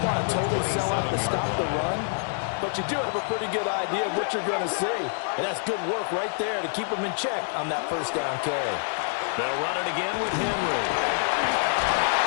to totally sell out to stop the run, but you do have a pretty good idea of what you're going to see. And that's good work right there to keep them in check on that 1st down carry. They'll run it again with Henry.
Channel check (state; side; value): silent; right; digital silence